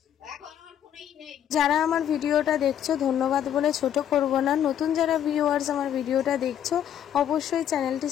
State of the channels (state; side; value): quieter; right; 10.0 dB